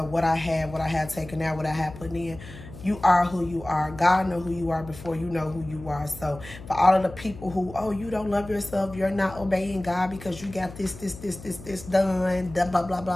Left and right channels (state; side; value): noise; left; hum, 15 dB below the sound